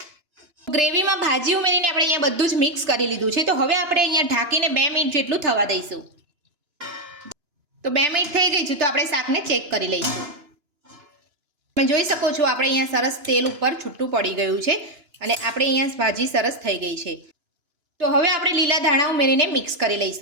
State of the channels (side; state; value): left; late; 2.9 ms